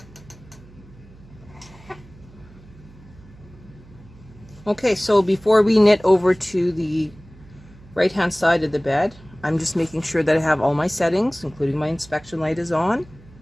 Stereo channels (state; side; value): noise; right; hum, 23 dB below the sound